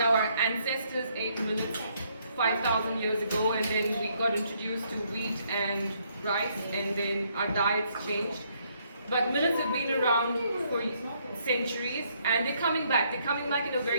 Our ancestors ate millets 5,000 years ago, and then we got introduced to wheat and rice, and then our diets changed. But millets have been around for centuries, and they're coming back. They're coming back in a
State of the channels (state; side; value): inverted; both; correlation -0.70